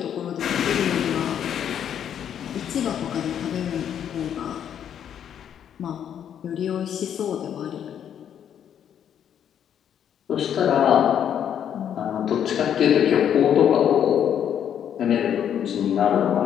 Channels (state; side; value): quieter; right; 9.2 dB